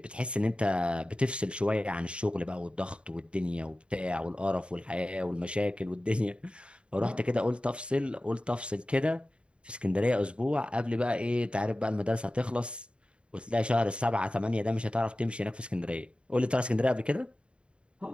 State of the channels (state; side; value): late; left; 0.056 ms